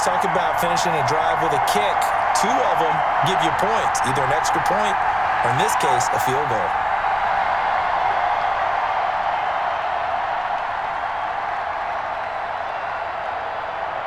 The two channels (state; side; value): identical; both; correlation 1.00